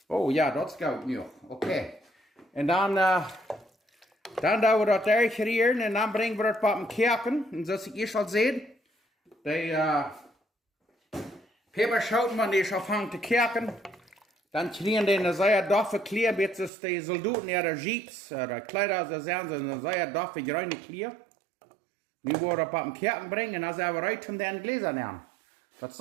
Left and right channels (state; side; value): drops out; left; at 16.7 s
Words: Oh ja, dat is goed nu. Oké. En dan doen we dat daar gerieren en dan brengen we dat op een keoken. En zoals ik eerst al zei, die peperschoten, wanneer die afhangt te koken, dan krijgen die een zeer doffe kleur, beetje die soldaten in de jeeps, de kleider, zo zijn ze een zeer doffe, bruine kleur. Nu worden we op een keoken brengen en dan zijn we uit van den Gläser nemen. Dat is